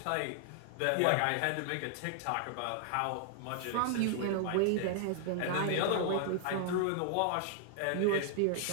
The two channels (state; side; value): different; both; correlation 0.00